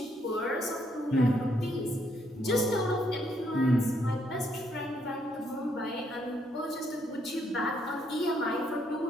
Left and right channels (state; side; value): normal; both; correlation 0.72